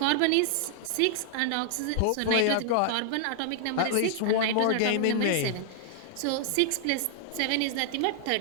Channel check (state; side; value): different; both; correlation -0.01